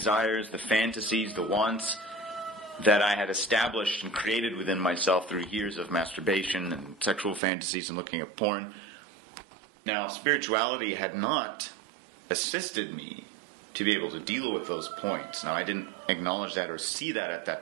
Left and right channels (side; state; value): left; drops out; at 7.4 s